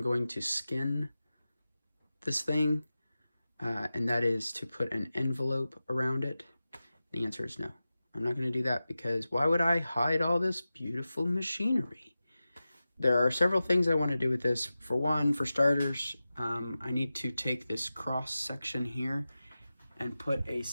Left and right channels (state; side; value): inverted; both; correlation -0.95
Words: going to skin this thing, and that is to put an envelope around it. The answer is no. I'm not going to do that because why would I hide all this beautiful machinery? There are several things I want to do with this. For one, for starters, I need to take this cross section here and put a